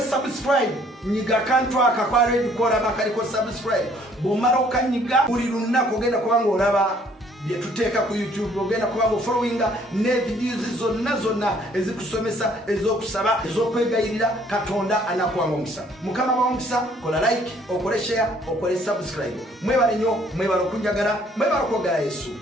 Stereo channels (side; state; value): both; normal; correlation 0.61